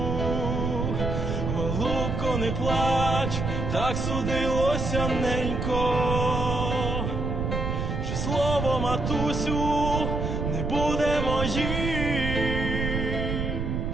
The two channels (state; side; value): noise; right; rumble, 2 dB below the sound